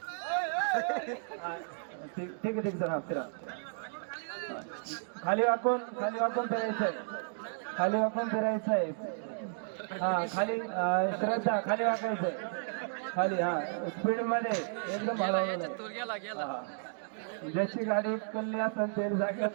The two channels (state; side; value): silent; left; digital silence